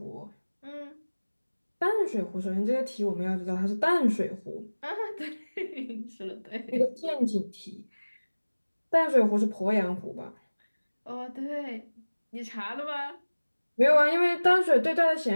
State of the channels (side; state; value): both; inverted; correlation -1.00